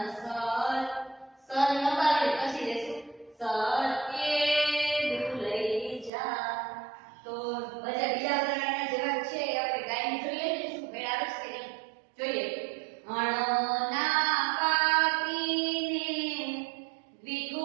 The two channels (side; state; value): left; drops out; at 6.1 s